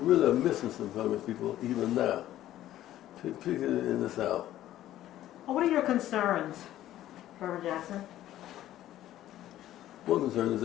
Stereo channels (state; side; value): quieter; right; 13.3 dB